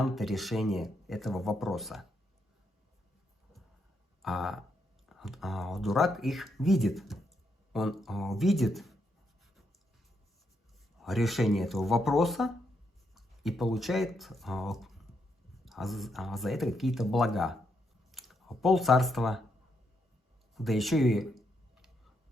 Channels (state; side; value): normal; both; correlation 0.79